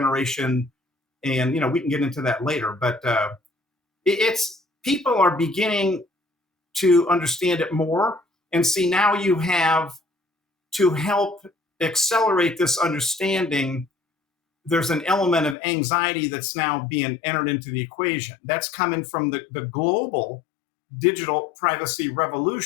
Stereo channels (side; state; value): right; drops out; at 15.6 s